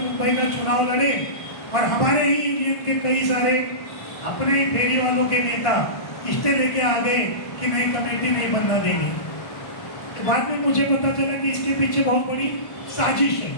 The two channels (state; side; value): late; right; 1.5 ms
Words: का चुनाव लड़े और हमारे ही यूनियन के कई सारे अपने फेरी वालों के नेता इस्ते लेके आ गए कि नई कमेटी नहीं बनना देंगे। तो बाद में मुझे पता चला कि इसके पीछे बहुत बड़ी साजिश है,